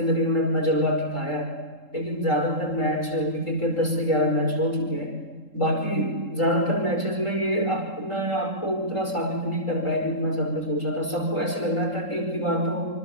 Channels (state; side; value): late; right; 3.8 ms